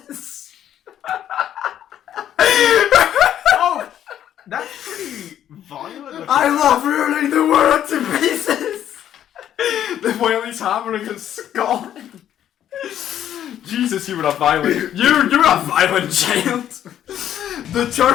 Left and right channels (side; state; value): right; quieter; 10.7 dB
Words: Oh! That's pretty violent. I love ruling the world to pieces! The while he's hammering his skull. Jesus, you were a violent. You're a violent child. The